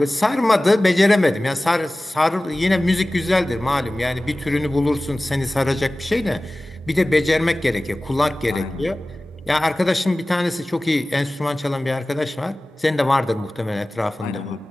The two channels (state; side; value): normal; both; correlation 0.97